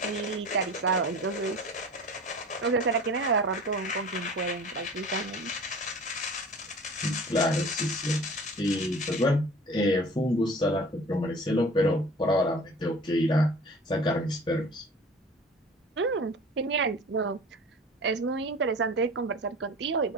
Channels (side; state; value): both; normal; correlation 0.42